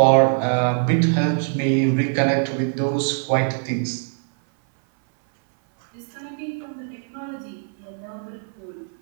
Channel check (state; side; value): silent; left; 60 dB below the other